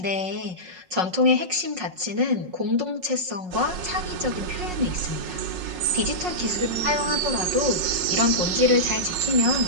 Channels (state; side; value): late; left; 5.5 ms